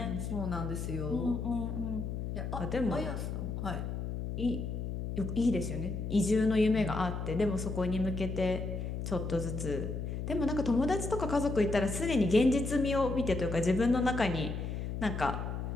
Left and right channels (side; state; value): left; noise; hum, 4 dB below the sound